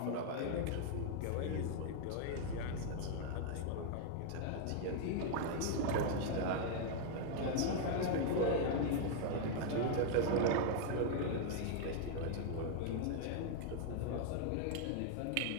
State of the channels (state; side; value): different; both; correlation 0.00